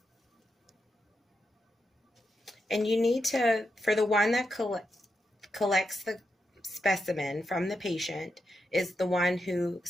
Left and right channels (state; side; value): normal; both; correlation 0.85